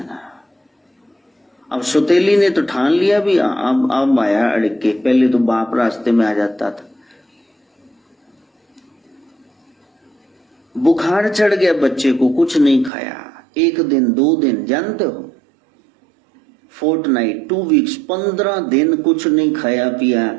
अब सौतेली ने तो ठान लिया भी, अब आया अड़क के। पहले तो बाप रास्ते में आ जाता था। बुखार चढ़ गया बच्चे को, कुछ नहीं खाया। 1 दिन 2 दिन, जानते हो, फोर्टनाइट, 2 वीक्स, 15 दिन कुछ नहीं खाया पिया,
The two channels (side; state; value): left; drops out; at 12.9 s